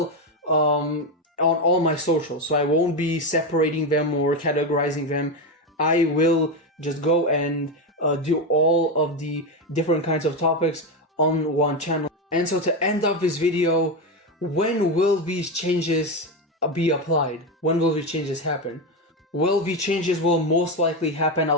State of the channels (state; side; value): normal; both; correlation 0.12